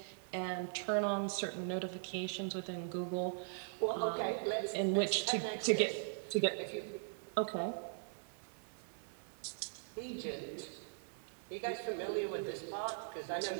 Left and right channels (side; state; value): left; silent; 51 dB below the other